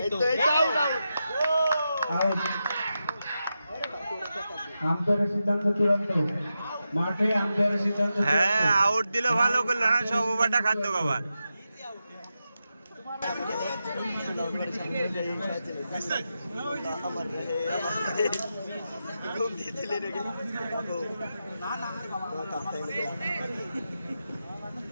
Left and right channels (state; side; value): inverted; both; correlation -0.89